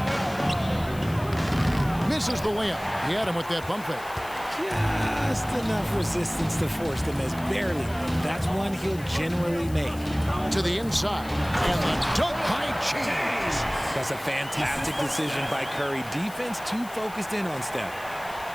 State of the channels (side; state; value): left; noise; hiss, 19 dB below the sound